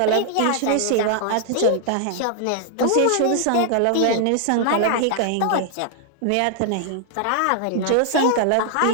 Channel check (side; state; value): both; different; correlation 0.00